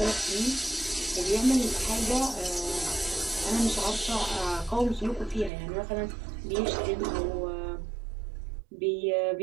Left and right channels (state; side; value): drops out; left; at 5.5 s